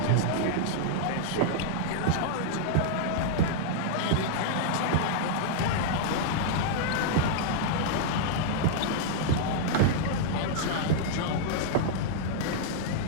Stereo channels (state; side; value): different; both; correlation -0.01